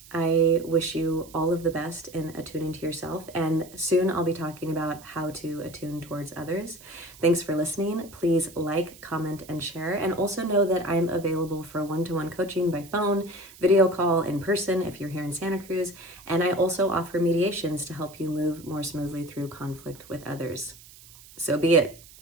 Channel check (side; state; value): right; noise; hiss, 21 dB below the sound